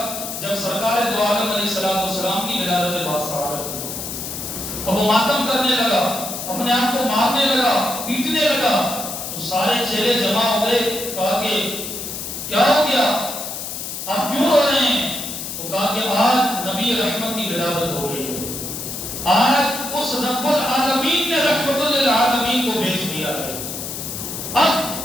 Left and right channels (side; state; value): left; noise; hiss, 7 dB below the sound